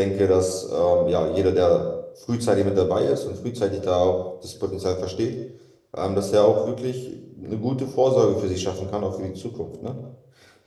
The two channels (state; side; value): identical; both; correlation 1.00